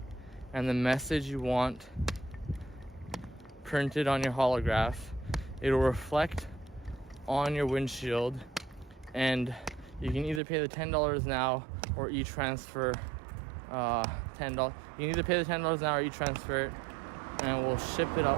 and the message you want printed on your holograph. It'll reflect on your windshield, and you can either pay the $10 now or e-transfer $10. You can either pay the $10 now or e-transfer it, and we'll ship it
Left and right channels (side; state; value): left; drops out; at 10.4 s